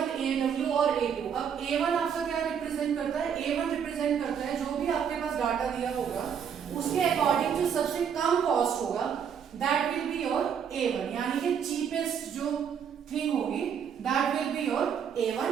AW और A2. अब A1 आपका क्या रिप्रेजेंट करता है? A1 रिप्रेजेंट करता है जो भी आपके पास डाटा दिया होगा उसके अकॉर्डिंग जो सबसे कम कॉस्ट होगा that will be your A1 यानी कि चीपेस्ट जो थिंग होगी that will be your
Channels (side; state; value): left; quieter; 7.7 dB